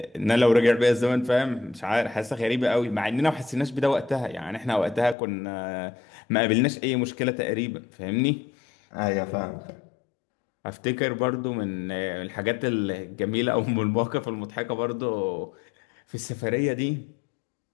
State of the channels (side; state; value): right; drops out; at 5.2 s